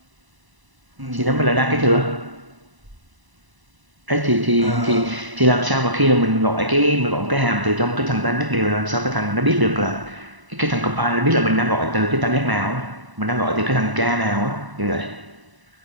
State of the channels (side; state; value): left; late; 1.0 ms